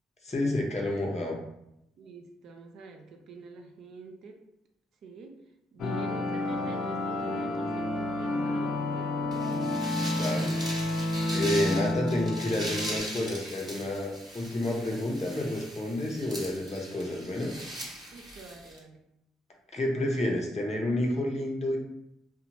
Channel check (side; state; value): both; normal; correlation 0.77